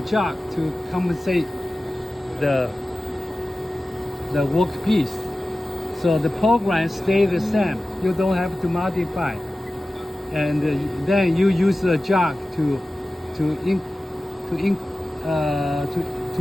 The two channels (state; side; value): normal; both; correlation 0.96